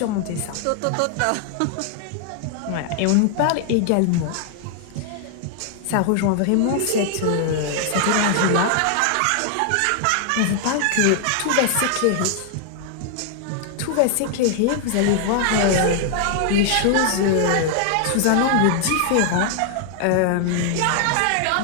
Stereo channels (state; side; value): different; both; correlation 0.00